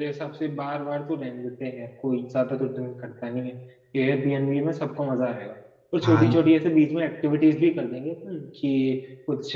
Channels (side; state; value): both; identical; correlation 1.00